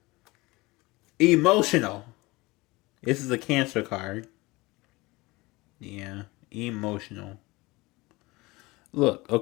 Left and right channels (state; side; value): quieter; right; 22.3 dB